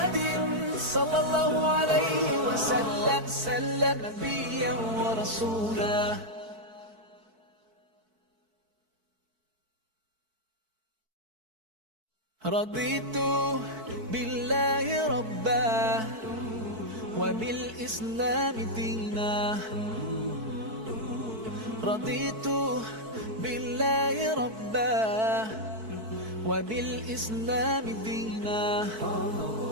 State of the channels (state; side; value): late; left; 4.6 ms